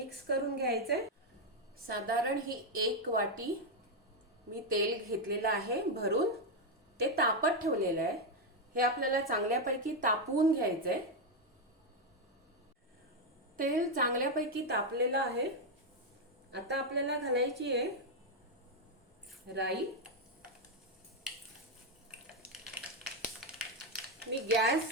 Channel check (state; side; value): normal; both; correlation 0.03